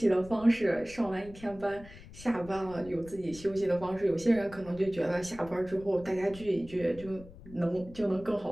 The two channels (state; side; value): noise; left; rumble, 18 dB below the sound